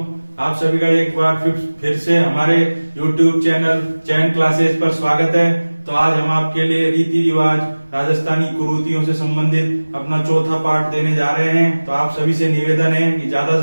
आप सभी का एक बार फिर से हमारे YouTube चैनल चैन क्लासेस पर स्वागत है। तो आज हम आपके लिए रीति रिवाज राजस्थानी कुरीतियों से संबंधित अपना चौथा पार्ट देने जा रहे हैं। तो आप सभी से निवेदन है कि ज्यादा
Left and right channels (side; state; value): both; inverted; correlation -1.00